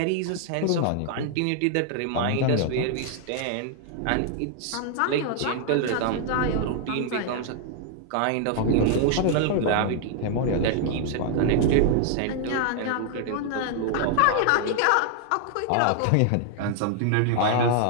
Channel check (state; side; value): different; both; correlation 0.00